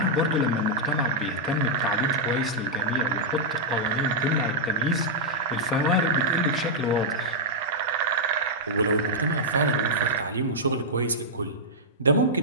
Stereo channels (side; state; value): both; normal; correlation -0.08